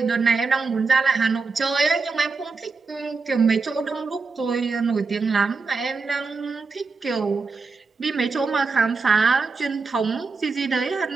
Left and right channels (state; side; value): quieter; left; 4.4 dB